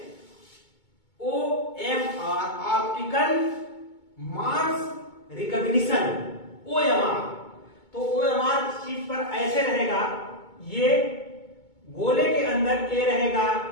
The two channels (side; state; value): right; late; 2.2 ms